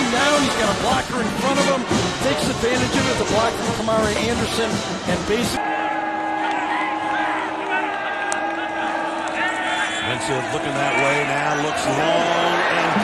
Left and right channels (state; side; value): identical; both; correlation 1.00